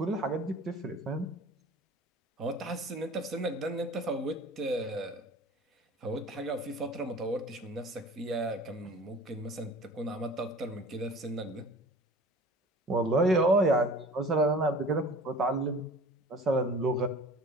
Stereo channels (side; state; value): both; normal; correlation 0.43